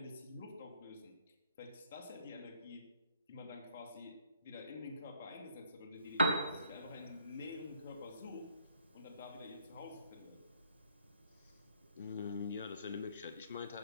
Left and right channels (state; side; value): inverted; both; correlation -0.66